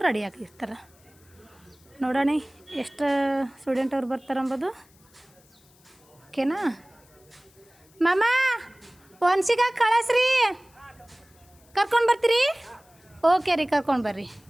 ರೆಡಿ ಆಗಿರ್ತಾರೆ. ನೋಡೋಣ ಎಷ್ಟು ಸ್ಟೂಡೆಂಟ್ ಅವ್ರು ಬರ್ತಾರೆ ಅಂಬೋದು. ಓಕೆನಾ? ಮಾಮ, ಒನ್ಸಿಗ ಕಳಿಸ್ರಿ, ಕರ್ಕೊಂಡು ಬರ್ತೀರಿ? ಓಕೆ ರೀ, ಕರ್ಕೊಂಡು ಬರ್ರಿ.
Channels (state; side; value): noise; left; hiss, 30 dB below the sound